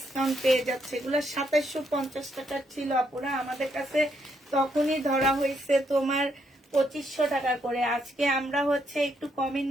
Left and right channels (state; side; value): normal; both; correlation 0.75